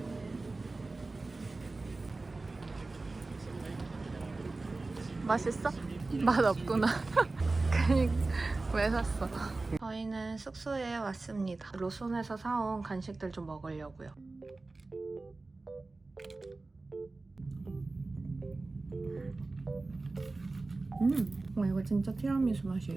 맛있어? 맛 없구나. 왜 샀어? 저희는 숙소에 왔습니다. 로손에서 사온 간식들 좀 먹으려고요. 와, 이거 진짜 티라미수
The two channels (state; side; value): quieter; left; 3.4 dB